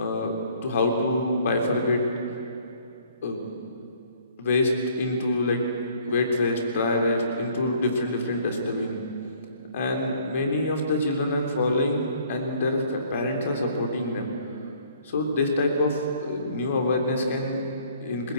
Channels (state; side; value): inverted; both; correlation -0.59